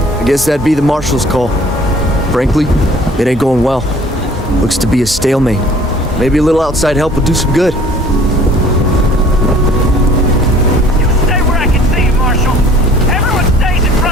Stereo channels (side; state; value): both; normal; correlation 0.52